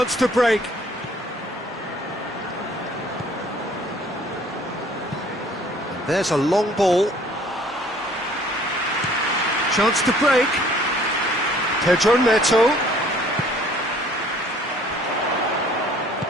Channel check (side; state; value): both; normal; correlation 0.56